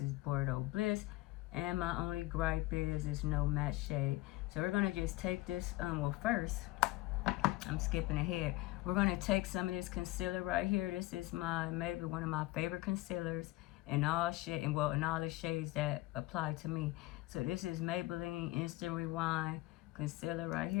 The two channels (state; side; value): quieter; right; 18.7 dB